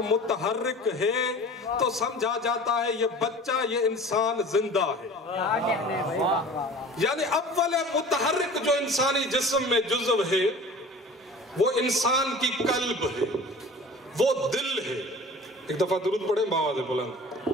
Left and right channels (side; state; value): both; normal; correlation 0.42